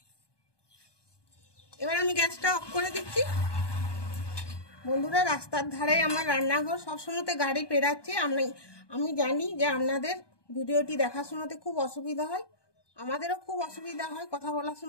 এবার আমি গ্যাসটা অফ করে দিচ্ছি। বন্ধুরা, রাস্তার ধারে আমার রান্নাঘর, সবসময় গাড়ি পেরাচ্ছে। আমি জানি যে আপনাদের ভিডিওটি দেখার সময়তে খুব অসুবিধা হয়, আমাদেরও খুব অসুবিধা হয় কথা বলার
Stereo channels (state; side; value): late; right; 1.2 ms